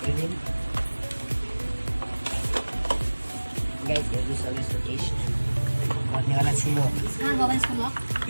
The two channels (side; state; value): both; inverted; correlation -1.00